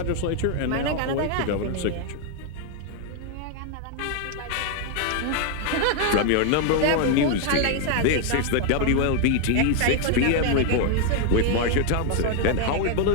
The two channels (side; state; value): both; different; correlation 0.00